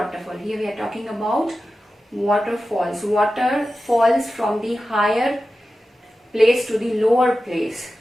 Here we are talking about waterfalls. Water falls from the higher place to the lower place.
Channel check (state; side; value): normal; both; correlation 0.93